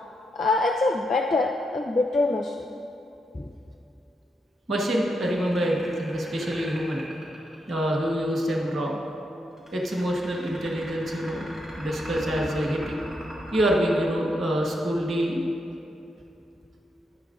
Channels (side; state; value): both; normal; correlation 0.81